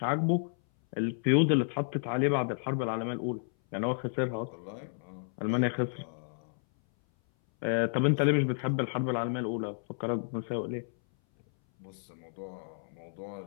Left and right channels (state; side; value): silent; right; 57 dB below the other